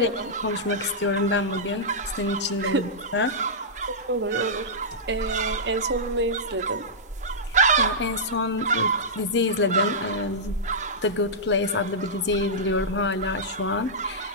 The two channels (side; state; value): both; normal; correlation -0.13